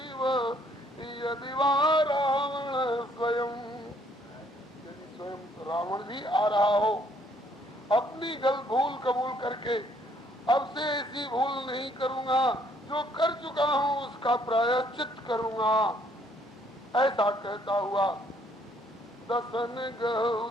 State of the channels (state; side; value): normal; both; correlation 0.66